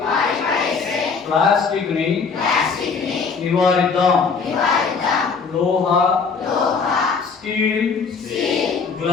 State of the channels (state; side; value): quieter; right; 5.3 dB